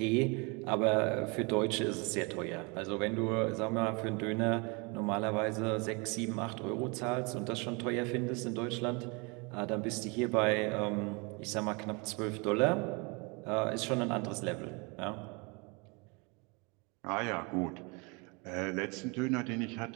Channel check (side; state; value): left; quieter; 30.0 dB